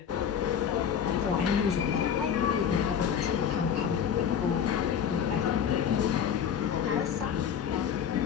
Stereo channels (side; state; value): right; quieter; 8.1 dB